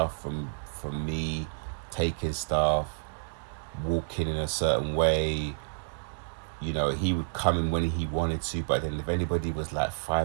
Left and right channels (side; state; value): left; silent; digital silence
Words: from me, taking stuff, walking in a certain way. You know, he would come in when he wanted to, but then if anybody was like